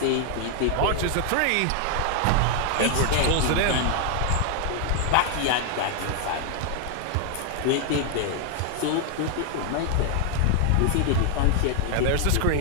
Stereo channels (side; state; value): both; different; correlation 0.01